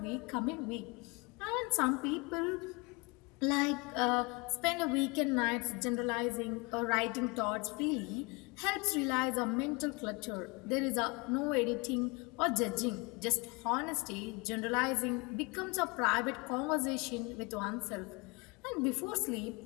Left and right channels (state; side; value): quieter; right; 28.5 dB